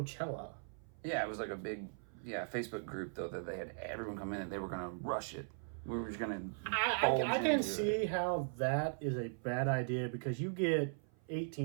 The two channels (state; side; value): silent; left; 52 dB below the other